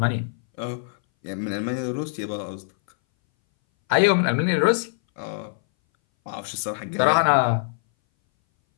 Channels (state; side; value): silent; right; 60 dB below the other